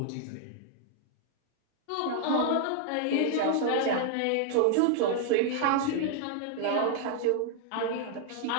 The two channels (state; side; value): different; both; correlation 0.00